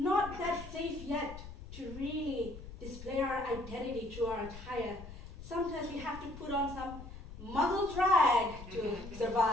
that safe yet to really display our identity through our attire. Sometimes we have to put on some muzzle drag to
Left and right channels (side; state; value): left; noise; rumble, 13 dB below the sound